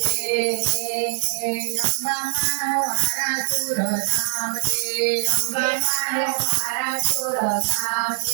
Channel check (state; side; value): silent; left; digital silence